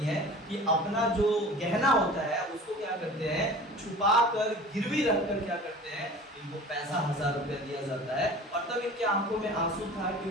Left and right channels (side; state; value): both; normal; correlation 0.41